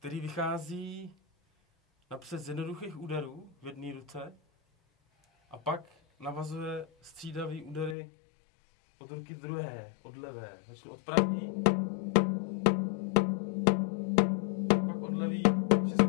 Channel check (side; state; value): right; drops out; at 8.0 s